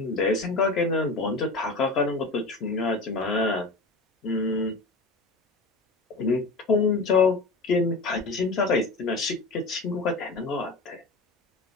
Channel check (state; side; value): quieter; right; 3.3 dB